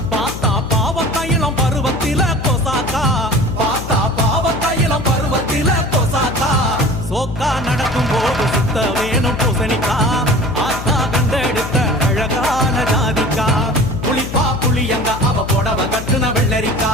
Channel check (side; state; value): left; noise; hum, 9 dB below the sound